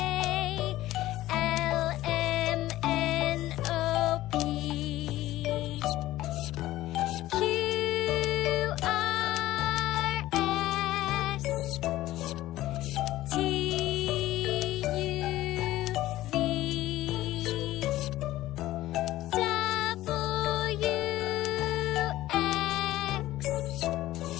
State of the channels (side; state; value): right; quieter; 15.6 dB